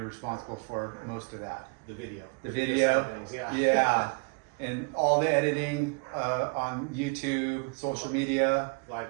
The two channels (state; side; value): quieter; left; 34.4 dB